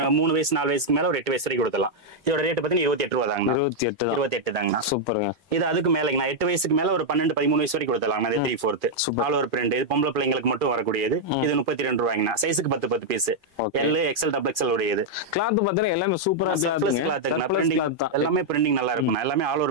3 வயசு 4 வயசுக்கு மேல ஒரு 8 வயசு வரைக்கும் கொடுக்கலாம். இதோட ரேட் பாத்தீங்கன்னா 28 ரூபாய் தாங்கண்ணா. 28 தாங்கண்ணா. சூப்பருங்க. இது அதுக்கு மேலங்கண்ணா. 8 வயசுக்கு மேல ஒரு 12 13 வயசு வரைக்கும் கொடுத்தலாம். இது 3/4 ஆல் ஓவர் பிரிண்ட். இது பொம்பளை பிள்ளைங்களுக்கு மட்டும் வரக்கூடியது. இது 32 ரூபாய்ங்கண்ணா. சைஸுக்கு 10 piece. L, XL, double XL உடையது. கிளாத் பாத்தீங்கன்னா எல்லாமே சூப்பரா கிளாத். எல்லாமே பிரிண்டிங் நல்லா இருக்கும். எல்லாமே ஆல்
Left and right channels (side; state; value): both; normal; correlation -0.02